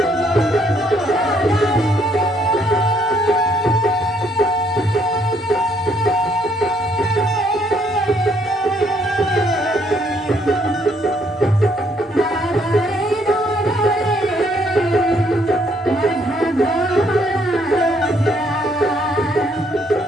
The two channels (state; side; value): normal; both; correlation 0.68